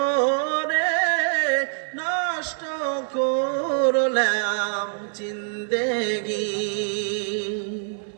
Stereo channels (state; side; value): silent; left; digital silence